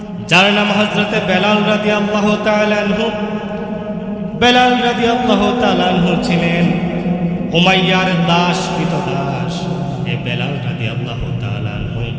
যার নাম হযরতে বেলাল রাদিয়াল্লাহু তাআলা আনহু। বেলাল রাদিয়াল্লাহু তাআলা আনহু ছিলেন উমাইয়ার দাস, কৃতদাস। এই বেলাল রাদিয়াল্লাহু তাআলা আনহু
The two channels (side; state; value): both; identical; correlation 1.00